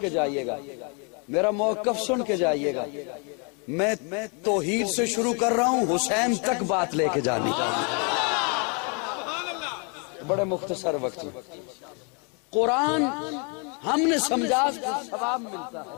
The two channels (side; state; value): right; quieter; 35.9 dB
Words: کے جائیے گا، میرا موقف سن کے جائیے گا. میں توحید سے شروع کر رہا ہوں، حسین تک بات لے کے جانی چاہیے. بڑے مختصر وقت میں قرآن ہم نے سمجھا ثواب ملتا ہے